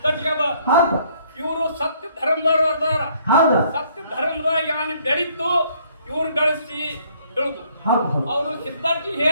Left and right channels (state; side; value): inverted; both; correlation -0.64